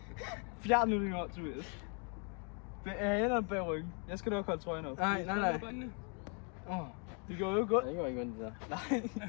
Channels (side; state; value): right; quieter; 37.8 dB